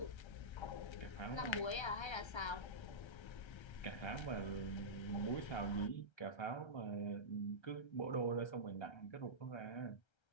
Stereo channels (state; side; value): late; right; 1.3 ms